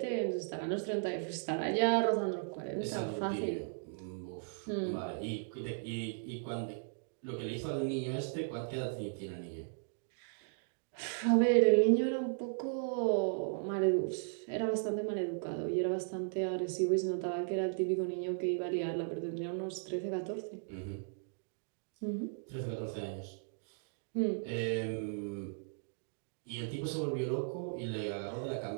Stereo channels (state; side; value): silent; left; digital silence